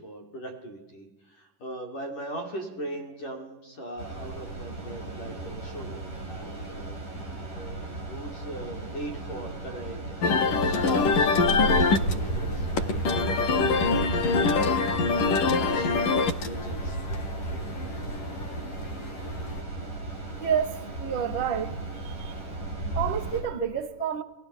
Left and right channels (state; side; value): late; right; 10 ms